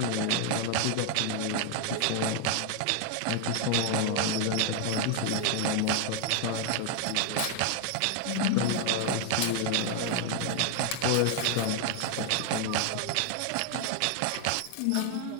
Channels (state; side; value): different; both; correlation 0.00